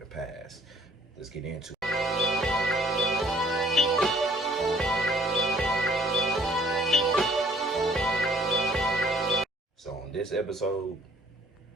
past? Let's get into it. So on this episode,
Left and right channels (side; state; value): both; normal; correlation 0.59